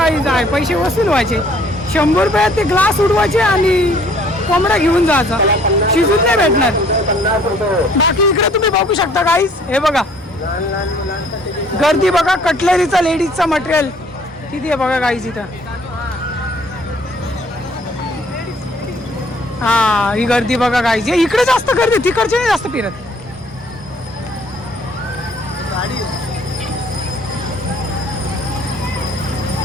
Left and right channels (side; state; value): both; normal; correlation 0.59